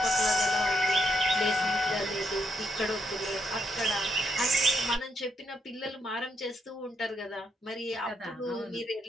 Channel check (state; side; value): normal; both; correlation 0.77